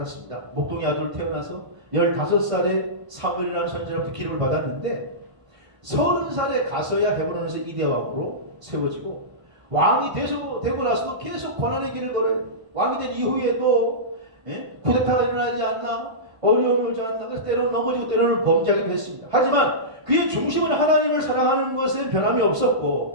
목동의 아들로 태어나서 15살에 사무엘이라는 선지자로부터 기름을 받았는데 30살에 가서야 헤브론에서 이대왕으로 세워지고 왕이 되고 나서도 계속 고난의 길을 걸어요. 왕이 된 이후에도 쿠데타가 일어나지 않나 어려움이 오지 않나 그래서 때로는 넘어지고 때로는 범죄하기도 했습니다. 하지만 그의 중심은 하나님을 사랑하는 것에 변함이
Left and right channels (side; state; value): left; late; 1.5 ms